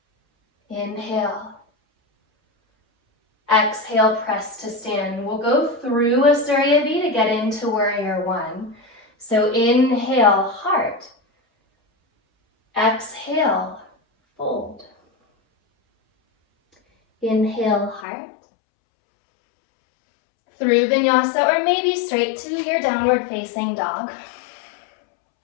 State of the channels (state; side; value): drops out; right; at 18.1 s